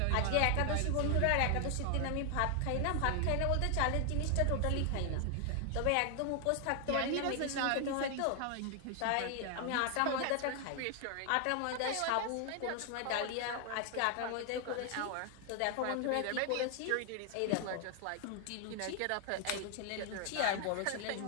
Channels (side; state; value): both; different; correlation 0.00